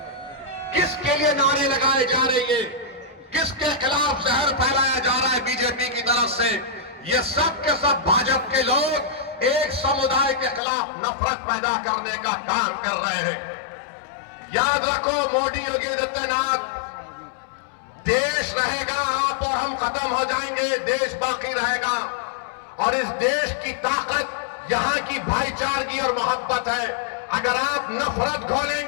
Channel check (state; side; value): drops out; right; at 10.6 s